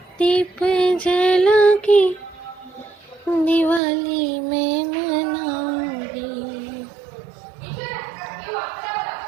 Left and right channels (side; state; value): left; drops out; at 3.8 s